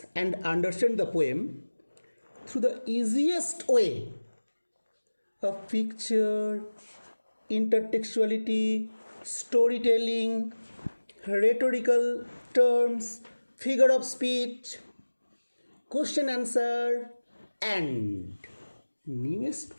and understand the poem through the easiest way of picture, intertextuality, storytelling, rhetorical terms, figure of speech, question answer, and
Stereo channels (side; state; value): both; inverted; correlation -1.00